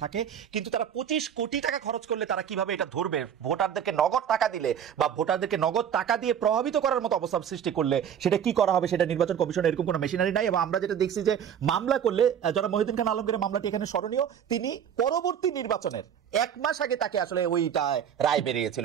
থাকে, কিন্তু তারা 25 কোটি টাকা খরচ করলে তারা কিভাবে এটা ধরবে? ভোটারদেরকে নগদ টাকা দিলে বা ভোটারদেরকে নগদ টাকা দিয়ে প্রভাবিত করার মতো অবস্থা সৃষ্টি করলে সেটা কি করা হবে? সেটা নির্বাচন কমিশনের এরকম কোনো মেশিনারি নাই। এবং আমরা যেটা দেখছি যে মামলা করলে, যারা মহিউদ্দিন খান আলমগীরের মামলাটি এখানে স্মরণীয়, তিনি পরবর্তী নির্বাচনের 1 মাস আগে তাকে আসলে ওইটা রায় বেরিয়েছিল,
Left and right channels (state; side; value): quieter; left; 8.8 dB